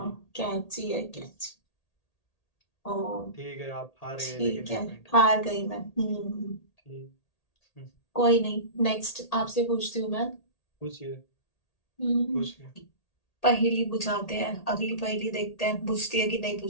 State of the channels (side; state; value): right; late; 1.8 ms